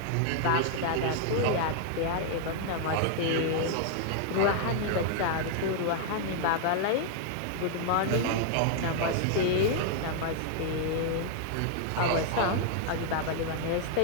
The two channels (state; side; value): different; both; correlation 0.00